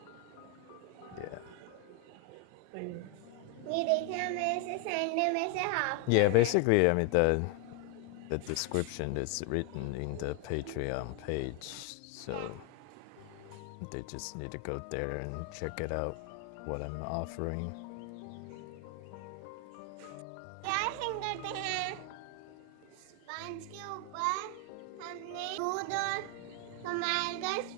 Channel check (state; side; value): different; both; correlation 0.00